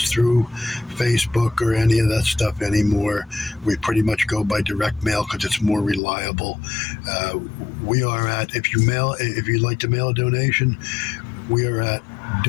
through Facebook or any of that stuff anymore. We pretty much go by direct mail because it's more reliable. We are at, if you'd like to mail a donation, we are at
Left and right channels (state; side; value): drops out; right; at 6.0 s